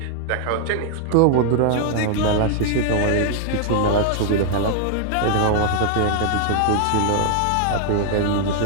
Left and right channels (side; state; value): both; different; correlation 0.00